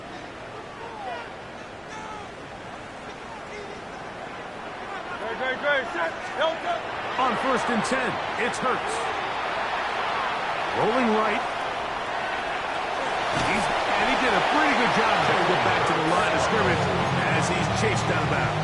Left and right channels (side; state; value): both; identical; correlation 1.00